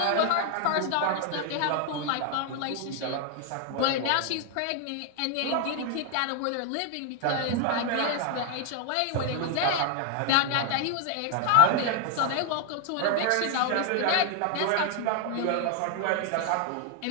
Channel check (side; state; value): both; different; correlation 0.00